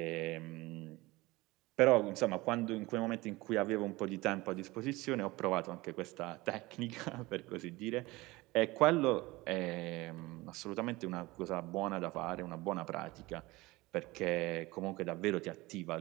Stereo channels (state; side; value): quieter; left; 21.0 dB